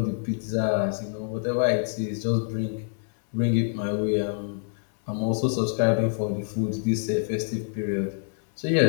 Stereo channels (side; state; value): right; silent; 59 dB below the other